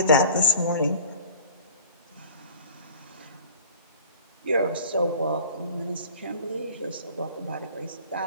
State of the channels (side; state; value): both; inverted; correlation -0.46